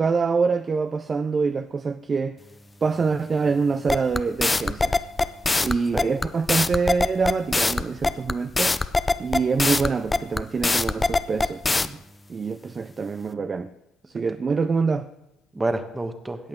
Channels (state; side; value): normal; both; correlation 0.90